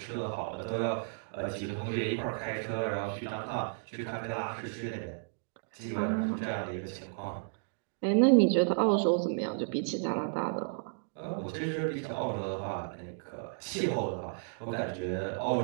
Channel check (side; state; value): left; silent; digital silence